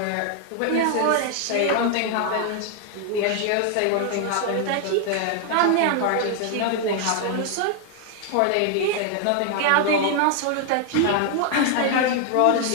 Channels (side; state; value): both; different; correlation 0.00